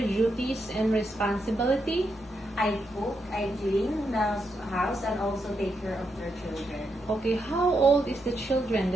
duties and responsibility? I cook, I clean the house, and also take care of their children. Okay, how old is the children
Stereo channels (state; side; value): normal; both; correlation 0.82